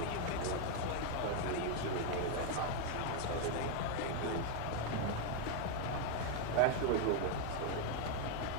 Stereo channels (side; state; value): both; different; correlation 0.01